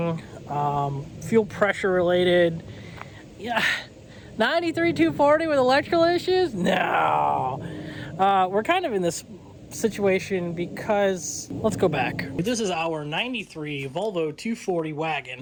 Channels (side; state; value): both; identical; correlation 1.00